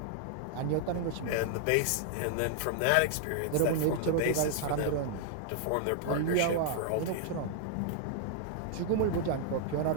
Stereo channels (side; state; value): both; different; correlation -0.01